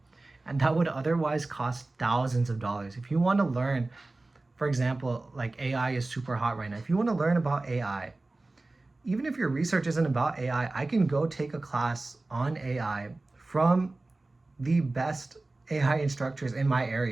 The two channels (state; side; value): quieter; left; 3.1 dB